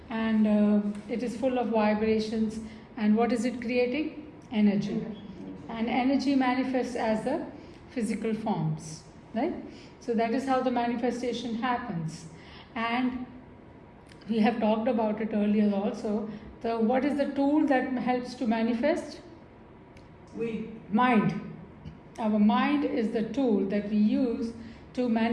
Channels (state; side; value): identical; both; correlation 1.00